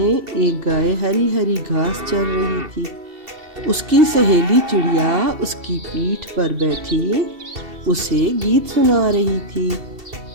ایک گائے ہری ہری گھاس چر رہی تھی۔ اس کی سہیلی چڑیا اس کی پیٹھ پر بیٹھی اسے گیت سنا رہی تھی۔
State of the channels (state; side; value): late; left; 2.7 ms